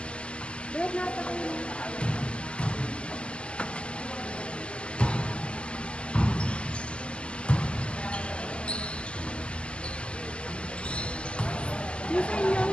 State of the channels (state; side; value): late; right; 0.058 ms